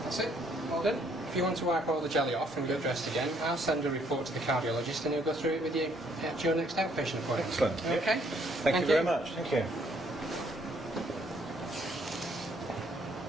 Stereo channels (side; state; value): both; normal; correlation 0.67